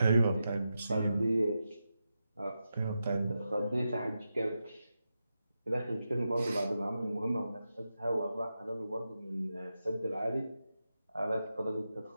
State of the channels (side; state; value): both; inverted; correlation -0.89